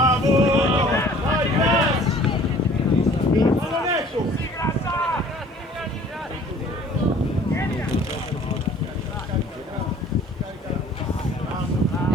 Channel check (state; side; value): normal; both; correlation 0.52